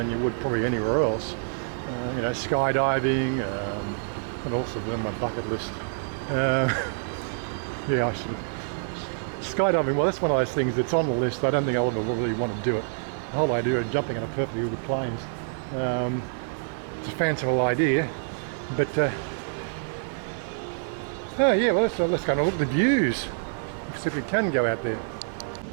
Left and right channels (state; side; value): silent; left; digital silence